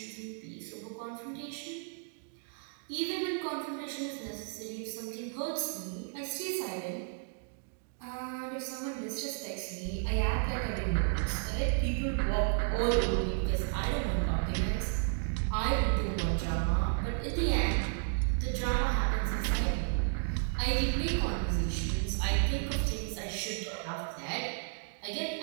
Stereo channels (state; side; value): silent; left; digital silence